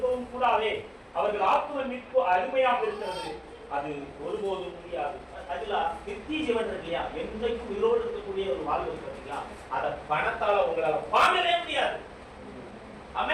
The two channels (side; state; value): both; identical; correlation 1.00